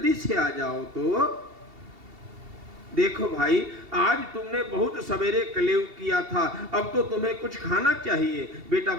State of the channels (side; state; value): left; late; 2.7 ms